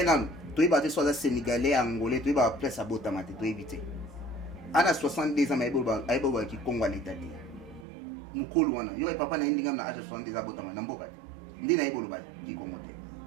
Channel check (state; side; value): drops out; left; at 7.9 s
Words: an, tu es basé sur la Sénégalais, Angolais, tu es basé place à Botamate, tu éviter. Ana 62 ans aibo ki Congo l'état dit mukolo wana yo papa na ndinga na âge 62 ans botama na mboka ndina aibo ba ki Congo te